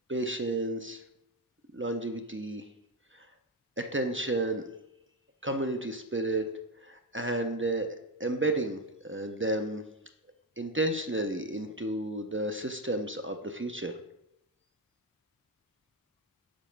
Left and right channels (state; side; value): normal; both; correlation 0.11